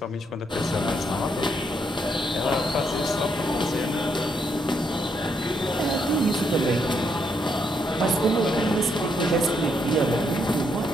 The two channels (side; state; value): both; normal; correlation 0.76